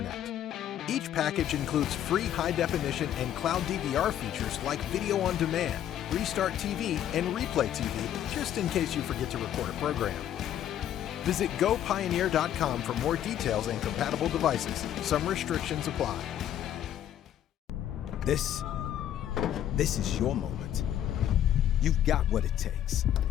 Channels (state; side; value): quieter; right; 10.9 dB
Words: Each package includes free high-definition and cloud DVR features like Video on Demand, Restart TV, and Replay TV, just in case you forget to record a program. Visit GoPioneer.com for more details and compatible devices. Some restrictions apply. This is your moment. You've got what it takes.